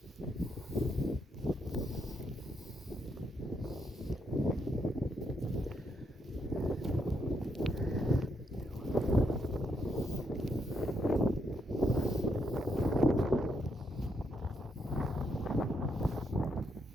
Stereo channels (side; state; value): both; normal; correlation 0.77